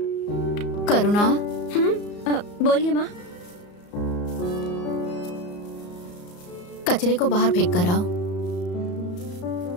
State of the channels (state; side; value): late; right; 34 ms